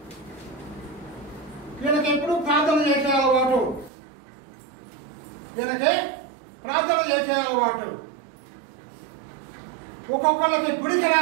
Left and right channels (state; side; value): drops out; left; at 3.9 s